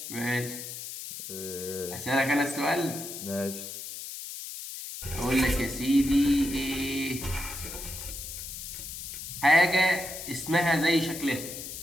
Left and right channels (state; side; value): noise; left; hiss, 9 dB below the sound